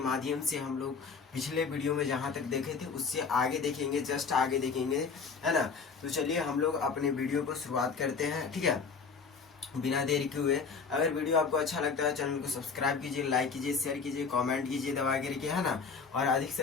से हम लोग पिछले वीडियो में जहाँ तक देखे थे उससे आगे देखेंगे, जस्ट आगे देखेंगे, है ना। तो चलिए हम लोग अपने वीडियो को शुरुआत करते हैं, ठीक है, बिना देर के हुए। अगर वीडियो आपको अच्छा लगता है चैनल को सब्सक्राइब कीजिए, लाइक कीजिए, शेयर कीजिए, कमेंट कीजिए दबा करके, है ना। और अधिक से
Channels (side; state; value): right; quieter; 5.3 dB